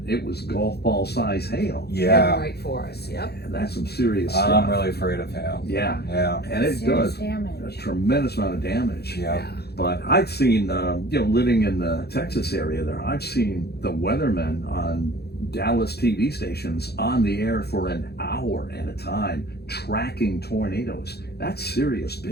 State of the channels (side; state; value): right; late; 0.47 ms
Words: it was golf ball size hail. Yeah. Right for us. Yep. And that's some serious I'm stuff. really afraid of hail. Yeah, Yeah. and it serious does a damage. tremendous amount of damage. Yeah. But I've seen, living in the Texas area there, I've seen the weathermen on Dallas TV stations on the air for an hour at a time tracking tornadoes. That's serious